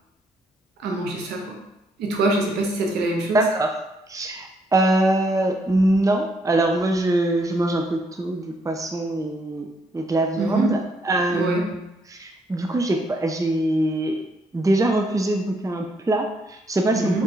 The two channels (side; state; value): both; normal; correlation 0.72